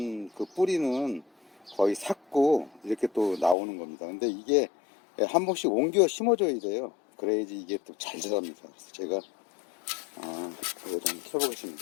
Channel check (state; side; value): drops out; right; at 3.6 s